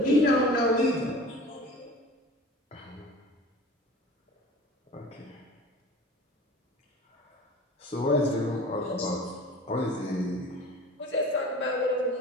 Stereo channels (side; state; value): both; normal; correlation 0.41